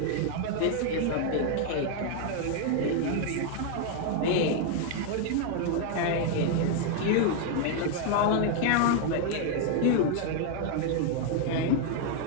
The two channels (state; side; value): different; both; correlation 0.00